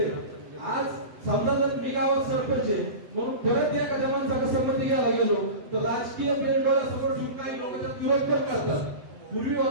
आज समजा जर मी गावात सरपंच आहे म्हणून परत एखाद्या माणसाला संमती घ्यायला गेलो तर राजकीय डोळ्यासमोर ठेवून काही लोक त्यात विरोध पण करतात. पूर्वी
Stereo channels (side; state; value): left; late; 7.9 ms